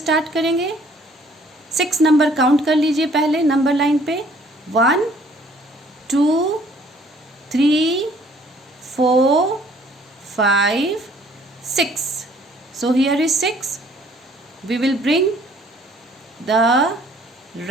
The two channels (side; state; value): both; normal; correlation 0.59